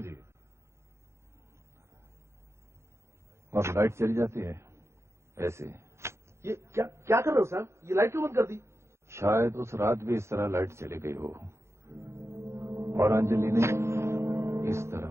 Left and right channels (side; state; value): left; late; 0.13 ms